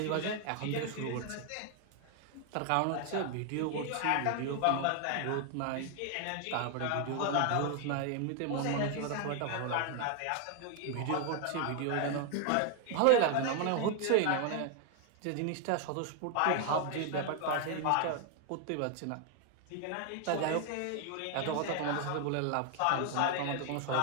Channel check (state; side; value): different; both; correlation 0.00